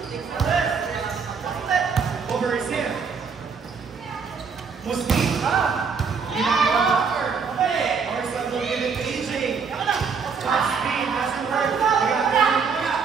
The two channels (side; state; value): left; quieter; 5.7 dB